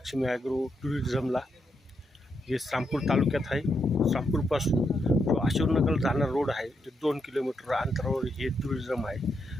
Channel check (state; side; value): normal; both; correlation 0.81